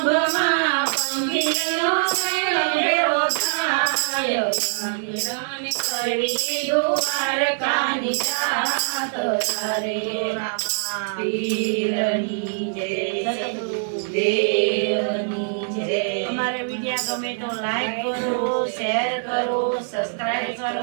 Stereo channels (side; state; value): left; silent; digital silence